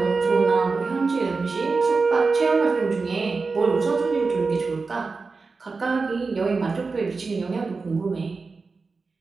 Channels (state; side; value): quieter; left; 4.3 dB